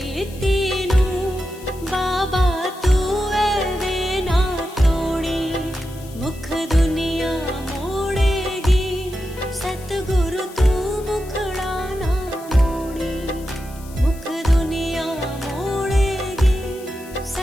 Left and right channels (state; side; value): noise; left; hiss, 20 dB below the sound